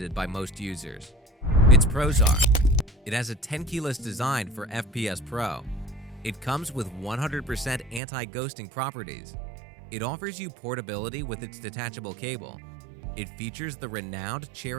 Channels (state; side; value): drops out; left; at 8.0 s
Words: by most users. Its pros are: it has a 10 keyless design for FPS Pro. It comes with 100% anti-ghosting properties. It offers you portability with its detachable cable. It features the renowned